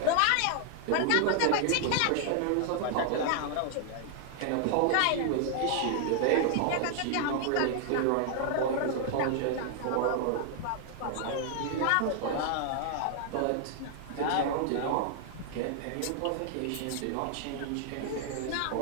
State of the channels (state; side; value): different; both; correlation 0.00